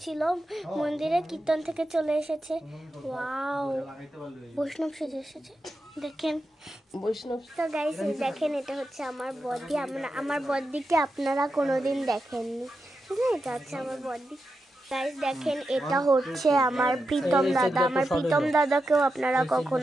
মন্দিরে কীর্তন থেকে চলে এসেছে। ওয়াও, বৈষ্ণব সেজে এসেছে, দেখেন বৈষ্ণব। তো গাইস দেখেন, এটা হচ্ছে আমার বডি, আমার বডিকে আপনারা কোনোদিন দেখেননি, ঠিক আছে, এটা হচ্ছে আমার বডি। গাইস দেখেন, এটা হচ্ছে আমার প্রীতম দাদা, আমার প্রীতম দাদাকেও আপনারা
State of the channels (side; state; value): both; normal; correlation 0.88